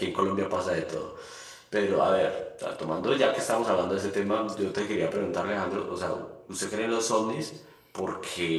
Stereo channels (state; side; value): identical; both; correlation 1.00